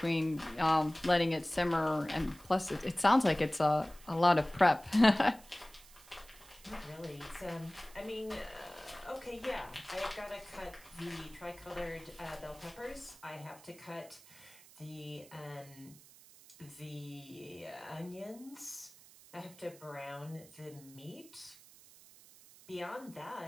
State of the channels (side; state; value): right; noise; hiss, 22 dB below the sound